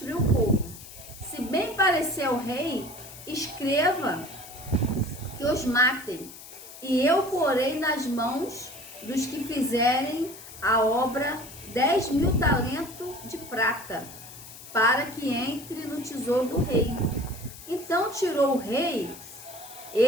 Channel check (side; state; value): left; noise; hiss, 16 dB below the sound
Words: o povo. Se bem parecer ao rei, escreva que os matem, e eu porei nas mãos dos que fizerem a obra 10.000 talentos de prata, para que entre no tesouro do rei. Então tirou o rei,